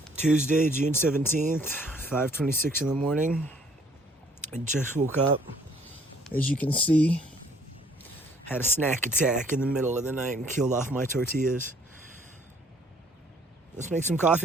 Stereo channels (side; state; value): both; normal; correlation 0.60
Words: Tuesday, June 17th, 5:26 in the morning. I just woke up. As you can see, had a snack attack in the middle of the night and killed off my tortillas. Let's make some